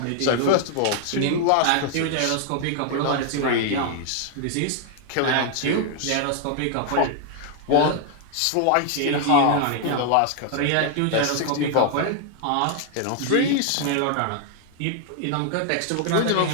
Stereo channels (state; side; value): different; both; correlation 0.00